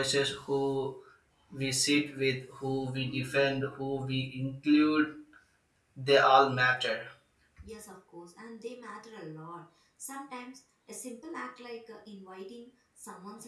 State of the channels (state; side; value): identical; both; correlation 1.00